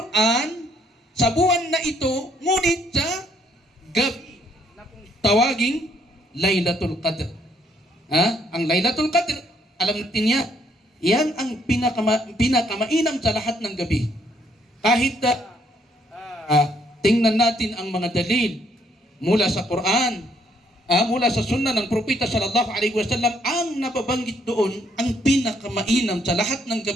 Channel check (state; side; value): normal; both; correlation 0.69